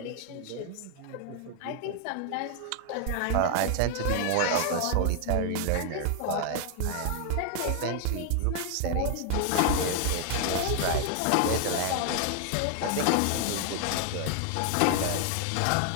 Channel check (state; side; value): different; both; correlation 0.00